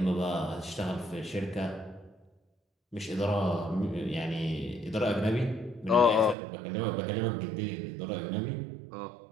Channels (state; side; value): drops out; left; at 6.4 s